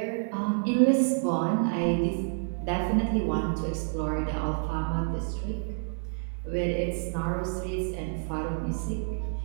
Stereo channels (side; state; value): left; silent; 59 dB below the other